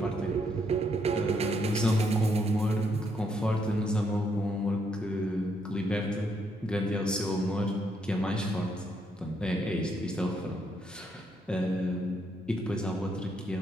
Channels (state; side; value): normal; both; correlation 0.74